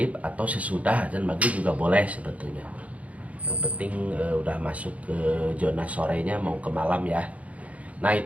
atau sesudah azan maghrib juga boleh sebetulnya. Yang penting udah masuk ke zona sorenya mau ke malam ya. Nah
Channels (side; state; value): left; late; 0.067 ms